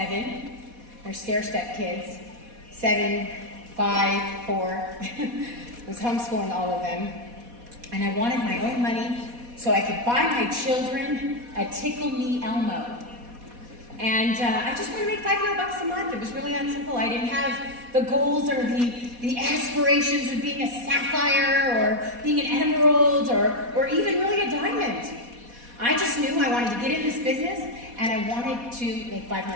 They're stair-step kids. 7, 5, 4. I was homeschooling all of them. And I wanted my own money so I could buy my children a Tickle Me Elmo. And I just wanted to make $500 a month. It was really that simple. I didn't have the goals or the aspirations of being a sapphire or being an emerald or even really a diamond. I just knew I wanted to get in this business and I wanted to make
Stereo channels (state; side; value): late; left; 4.1 ms